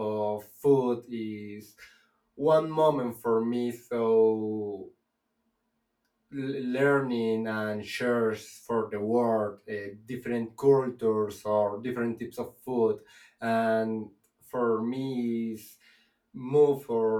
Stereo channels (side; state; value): both; identical; correlation 1.00